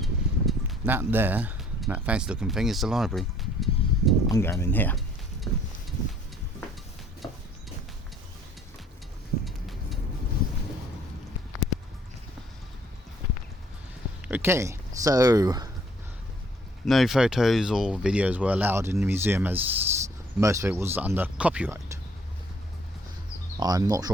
That there, that fancy looking thing, is the library. I'm going in here. Okay, so no photos or videos were allowed in the museum as most of it was under copyright. I'm not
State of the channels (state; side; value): normal; both; correlation 0.60